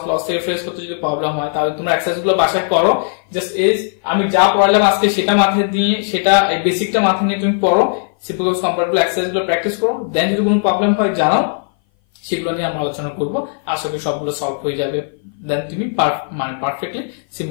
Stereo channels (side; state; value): right; silent; 59 dB below the other